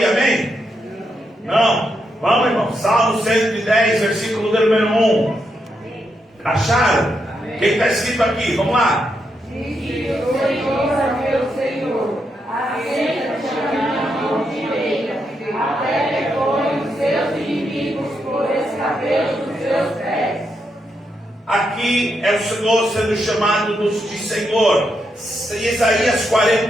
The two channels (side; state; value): both; normal; correlation 0.82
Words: amém? Não? Vamos, irmão. Salmo 110, versículo número 1. Acharam? O que está escrito aqui? Vamos lá. Disse o Senhor a meu Senhor: assenta-te à minha mão direita, até que põe os seus inimigos por escabelo dos seus pés. Aqui é o Senhor sendo chamado de Senhor. Isaías